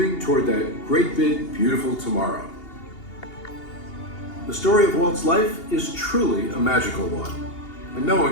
toward that great big, beautiful tomorrow. The story of Walt's life is truly a magical one, and no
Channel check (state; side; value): late; right; 2.8 ms